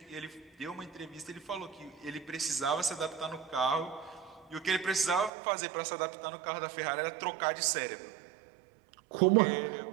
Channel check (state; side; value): drops out; left; at 5.3 s